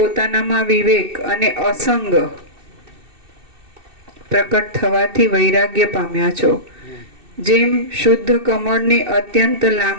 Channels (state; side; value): late; left; 2.6 ms